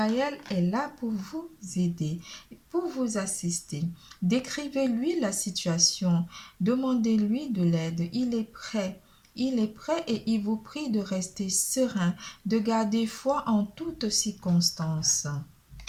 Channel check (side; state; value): both; identical; correlation 1.00